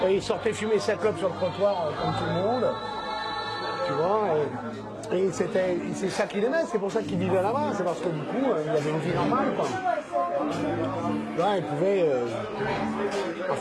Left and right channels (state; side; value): identical; both; correlation 1.00